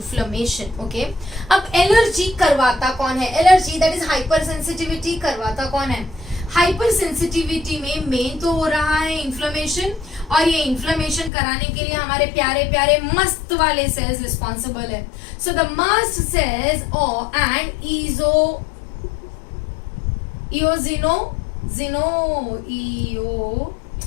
Okay, अब allergy करवाता कौन है? Allergy that is hypersensitivity करवाता कौन है? Hyper sensitivity में main तो हो रहा है इन्फ्लेमेशन, और ये इन्फ्लेमेशन कराने के लिए हमारे प्यारे प्यारे मस्त वाले सेल्स रिस्पॉन्सिबल है. So the mast cells and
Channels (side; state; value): right; drops out; at 11.3 s